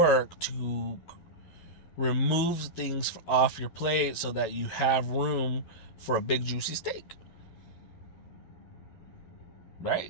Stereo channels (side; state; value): right; late; 11 ms